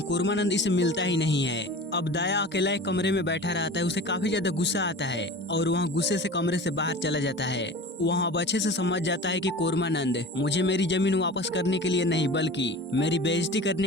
कुर्मानंद इसे मिलता ही नहीं है। अब दया अकेला एक कमरे में बैठा रहता है, उसे काफी ज्यादा गुस्सा आता है और वहाँ गुस्से से कमरे से बाहर चला जाता है। वहाँ अब अच्छे से समझ जाता है कि कुर्मानंद मुझे मेरी जमीन वापस करने के लिए नहीं बल्कि मेरी बेइज्जती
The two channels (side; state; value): both; normal; correlation 0.37